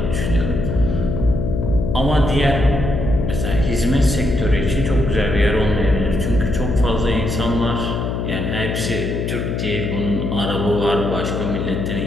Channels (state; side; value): noise; left; hum, 2 dB below the sound